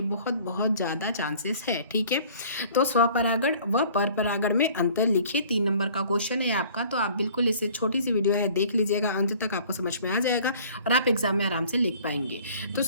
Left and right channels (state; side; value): inverted; both; correlation -0.51